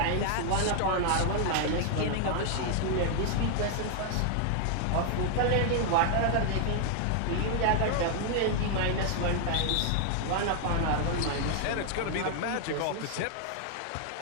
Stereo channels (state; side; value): different; both; correlation 0.00